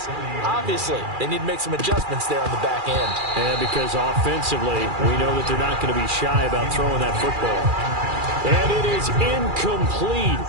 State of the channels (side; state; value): left; late; 2.4 ms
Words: Obviously, they need to make some adjustments there on the back end. And because offensively, we know that they're not going to be shy about throwing that football. And it is incomplete.